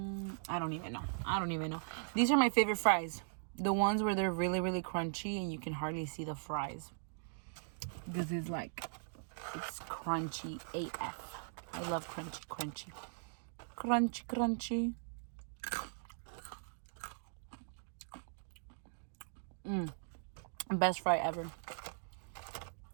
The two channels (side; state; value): left; silent; digital silence